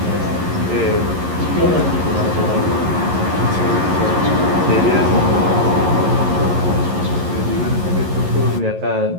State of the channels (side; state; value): left; late; 11 ms